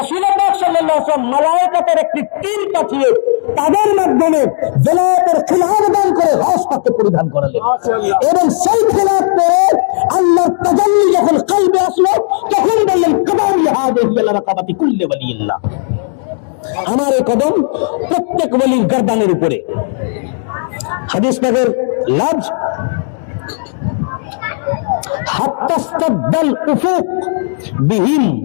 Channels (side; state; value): right; silent; digital silence